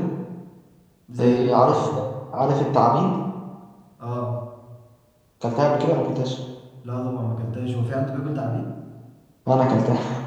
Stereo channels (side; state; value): both; identical; correlation 1.00